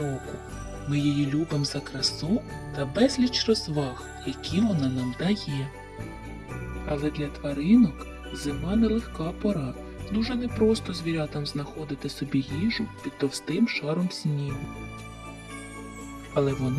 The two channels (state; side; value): identical; both; correlation 1.00